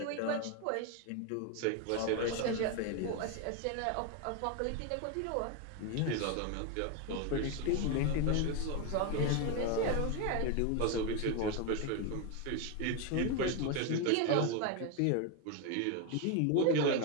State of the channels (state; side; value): different; both; correlation 0.02